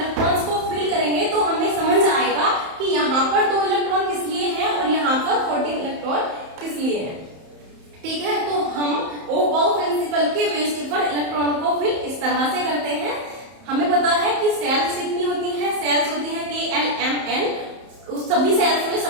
को फिल करेंगे तो हमें समझ आएगा कि यहाँ पर 2 इलेक्ट्रॉन किस लिए है और यहाँ पर 14 इलेक्ट्रॉन किस लिए है। ठीक है, तो हम ओबाउ प्रिंसिपल के बेस पर इलेक्ट्रॉन को फिल इस तरह से करते हैं। हमें पता है कि सेल्स कितनी होती है, सेल्स होती है KLMN, उस सभी सेल्स में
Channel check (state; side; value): late; left; 31 ms